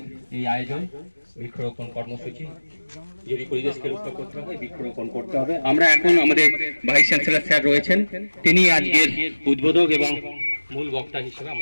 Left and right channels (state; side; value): inverted; both; correlation -1.00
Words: এই আয়োজন, বৃক্ষরোপণ কর্মসূচি। যদি পরিবেশকে রক্ষা করতে হবে, বৃক্ষরোপণ করতে হবে। আমরা এখন আমাদের ভাইস চ্যান্সেলর স্যার রয়েছেন, তিনি আজকের উদ্বোধক এবং মূল বক্তা হিসেবে